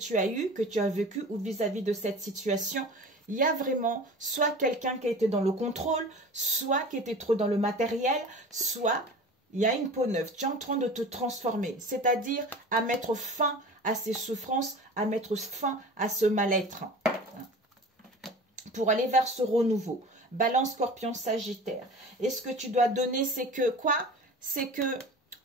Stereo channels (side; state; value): both; normal; correlation 0.37